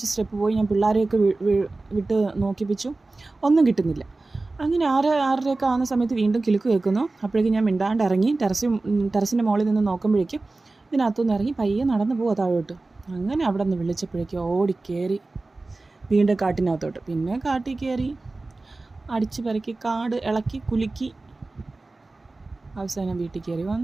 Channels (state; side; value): quieter; left; 3.3 dB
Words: സ്റ്റെപ്പ് പോയി ഞാൻ പിള്ളേരെയൊക്കെ വിട്ട് നോക്കിപ്പിച്ചു. ഒന്നും കിട്ടുന്നില്ല. അങ്ങനെ 6:30 ആവുന്ന സമയത്ത് വീണ്ടും കിലുക്ക് കേൾക്കുന്നു. അപ്പോഴേക്കും ഞാൻ മിണ്ടാണ്ട് ഇറങ്ങി ടെറസിൻ്റെ മുകളിൽ നിന്ന് നോക്കുമ്പോഴേക്കും ഇതിനകത്തുനിന്ന് ഇറങ്ങി പയ്യെ നടന്നു പോവാ താഴോട്ട്. അങ്ങനെ അവിടെ നിന്ന് വിളിച്ചപ്പോഴേക്കും ഓടിക്കയറി വീണ്ടും കാട്ടിനകത്തോട്ട്. പിന്നെ കാട്ടിൽ കയറി അടിച്ച് പെരക്കി കാട് ഇളക്കി കുലുക്കി അവസാനം വീട്ടിൽ കയറി